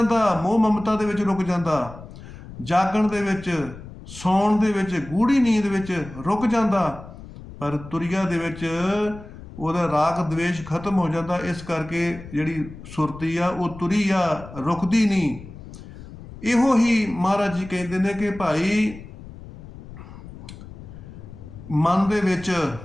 ਮੋਹ ਮਮਤਾ ਦੇ ਵਿੱਚ ਰੁਕ ਜਾਂਦਾ, ਜਾਗਣ ਦੇ ਵਿੱਚ, ਸੌਣ ਦੇ ਵਿੱਚ, ਗੂੜੀ ਨੀਂਦ ਵਿੱਚ ਰੁਕ ਜਾਂਦਾ। ਪਰ ਤੁਰਿਆ ਦੇ ਵਿੱਚ ਉਹਦਾ ਰਾਗ ਦਵੇਸ਼ ਖਤਮ ਹੋ ਜਾਂਦਾ। ਇਸ ਕਰਕੇ ਜਿਹੜੀ ਸੁਰਤੀ ਆ ਉਹ ਤੁਰੀ ਆ, ਰੁਕਦੀ ਨਹੀਂ। ਇਹੋ ਹੀ ਮਹਾਰਾਜ ਜੀ ਕਹਿੰਦੇ ਨੇ ਕਿ ਭਾਈ ਮਨ ਦੇ ਵਿੱਚ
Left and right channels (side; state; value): left; noise; rumble, 15 dB below the sound